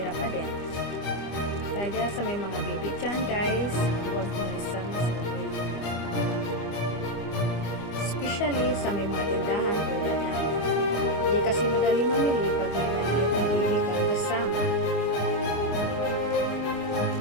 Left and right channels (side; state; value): right; late; 25 ms